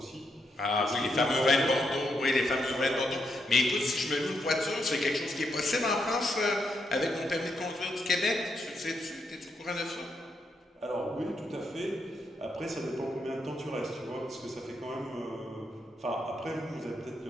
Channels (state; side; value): normal; both; correlation 0.80